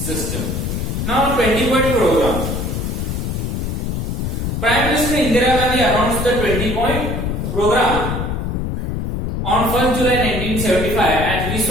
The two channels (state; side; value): noise; left; rumble, 2 dB below the sound